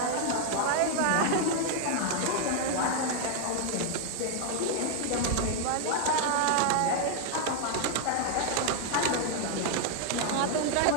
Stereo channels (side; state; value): both; different; correlation 0.00